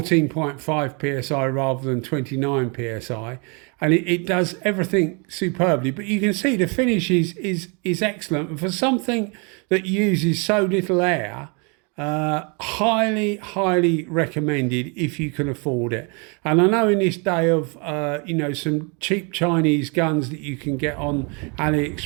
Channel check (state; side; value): quieter; left; 33.6 dB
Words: psi rather than 29 psi, and it does everything superbly. But you can see the finish is excellent, and for something that uses so little air, highly recommended if you can afford it. And I know in this day of you know, some cheap Chinese guns that you can get on